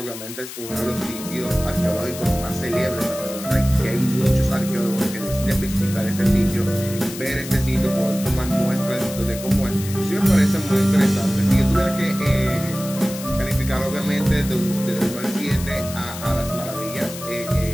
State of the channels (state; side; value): noise; left; hiss, 11 dB below the sound